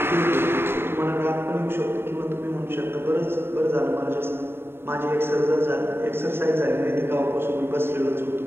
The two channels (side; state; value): left; late; 0.11 ms